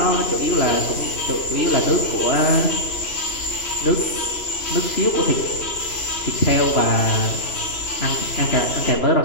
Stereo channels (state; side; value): late; right; 2.9 ms